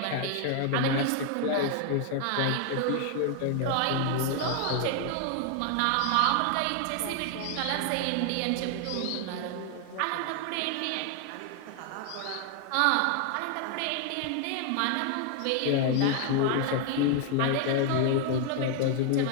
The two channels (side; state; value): both; different; correlation 0.00